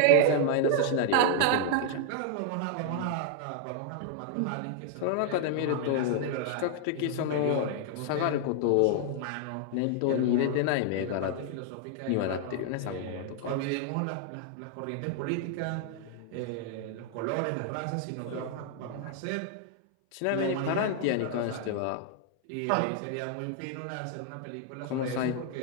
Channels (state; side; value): different; both; correlation 0.00